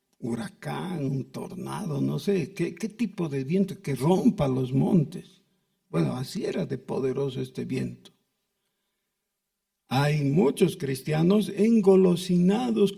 huracán, un tornado, no sé, ¿qué tipo de viento que rompa los montes? Bueno, así era de poderoso este viento. Hay muchos cristianos engolosinados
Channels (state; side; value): identical; both; correlation 1.00